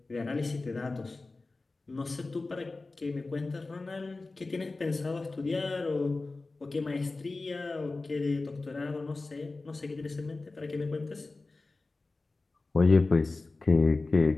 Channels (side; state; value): right; quieter; 3.4 dB